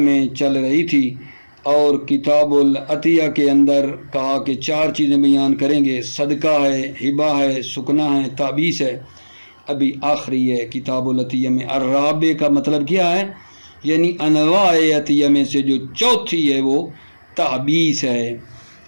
چل رہی تھی، اور کتاب العطیہ کے اندر کہا کہ 4 چیزیں بیان کریں گے، صدقہ ہے، ہبہ ہے، سکنہ ہے، تعبیث ہے۔ ابھی آخری ہے کتاب العطیہ میں الرابع کا مطلب کیا ہے، یعنی انواع عطیہ میں سے جو چوتھی ہے وہ تعبیث ہے۔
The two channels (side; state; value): both; inverted; correlation -1.00